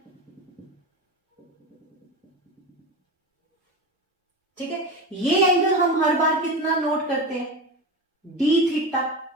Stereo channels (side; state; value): both; normal; correlation 0.24